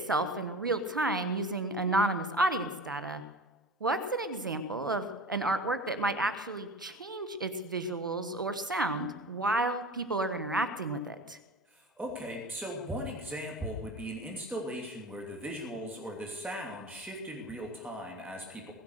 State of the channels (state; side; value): normal; both; correlation 0.34